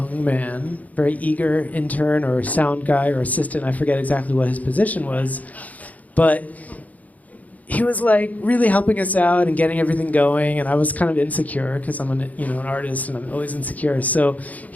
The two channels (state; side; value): late; right; 0.075 ms